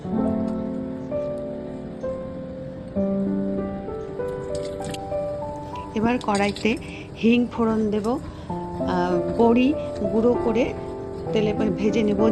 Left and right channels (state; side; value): identical; both; correlation 1.00